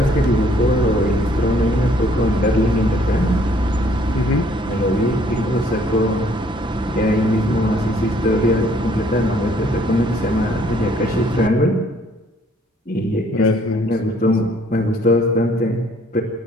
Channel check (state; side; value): normal; both; correlation 0.62